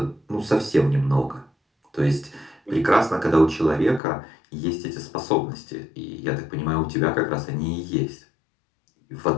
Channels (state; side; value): drops out; right; at 4.0 s